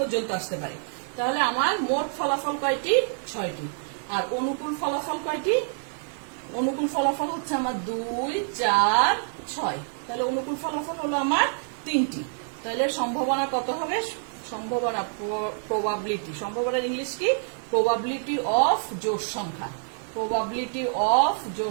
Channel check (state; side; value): silent; left; digital silence